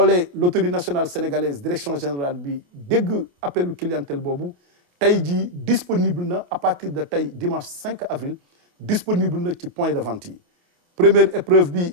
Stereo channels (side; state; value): left; late; 28 ms